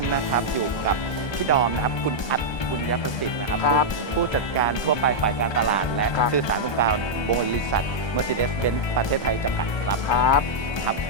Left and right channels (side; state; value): right; late; 1.2 ms